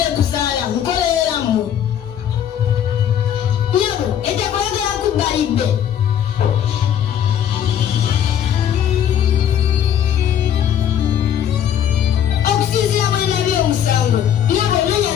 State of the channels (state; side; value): quieter; right; 9.6 dB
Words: kuzaala nkoleramu. Nyabo, etekwagala kubalibbe. Okusinziira bwe nabye omusango, nyabo nenya